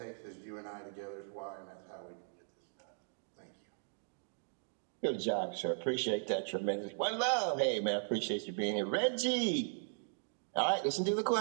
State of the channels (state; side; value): silent; left; digital silence